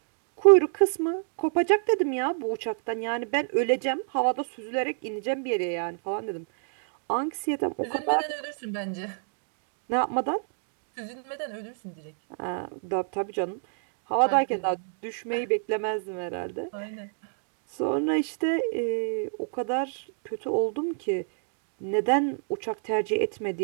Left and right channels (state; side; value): silent; left; digital silence